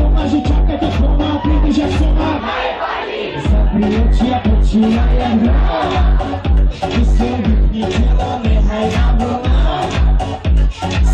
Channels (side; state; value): both; identical; correlation 1.00